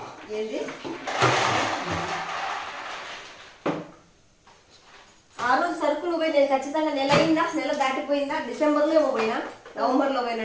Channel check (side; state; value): both; identical; correlation 1.00